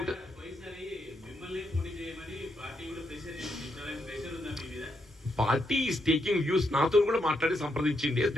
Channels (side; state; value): both; normal; correlation 0.80